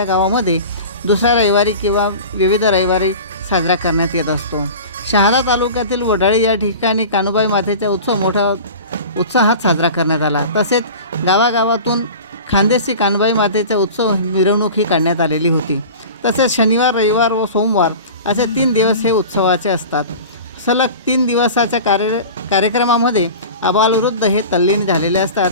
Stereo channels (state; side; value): inverted; both; correlation -0.36